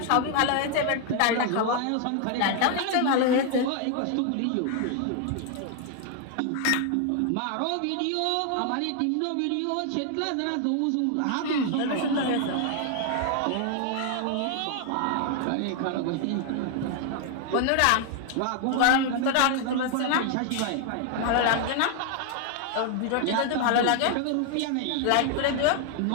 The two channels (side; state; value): both; different; correlation 0.00